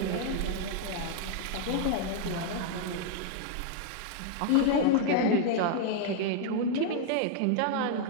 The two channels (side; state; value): both; different; correlation 0.00